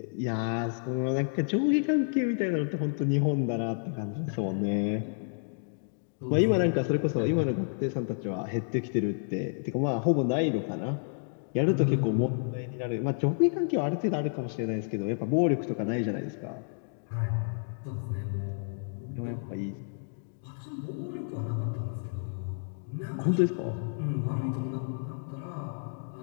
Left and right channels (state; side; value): silent; right; digital silence